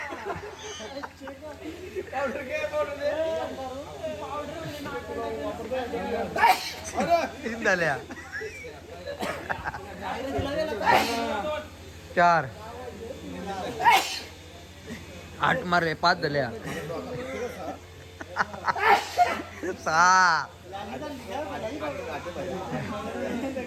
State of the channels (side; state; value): both; identical; correlation 1.00